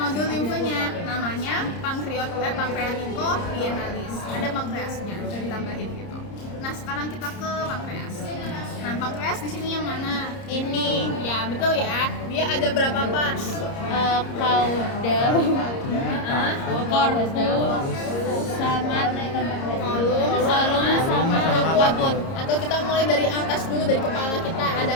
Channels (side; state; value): right; late; 30 ms